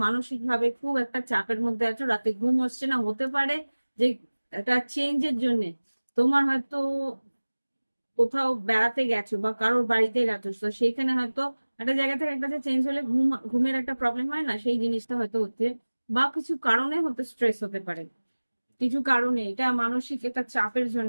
মানসিক ভাবে খুব একটা চাপের মধ্যে আছো, রাতে ঘুম হচ্ছে না। হতে পারে যে একটা চেঞ্জের জন্য তোমার হয়তো কোথাও বেড়াতে গেছো বা কারোর বাড়িতে গেছো, তো সেইখানে হয়তো একটা জায়গা থেকে একটা চেঞ্জ হলে ঘুমের একটা প্রবলেম হয় না, সেই জিনিসটা হয়তো হচ্ছে। বা কিছু কারণে হতে স্ট্রেস হতে পারে, কিছু কারণে এটা মানসিক একটা চাপের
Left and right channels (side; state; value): both; inverted; correlation -1.00